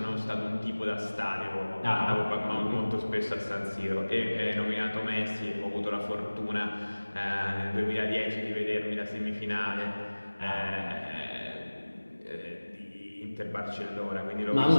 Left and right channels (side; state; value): both; inverted; correlation -1.00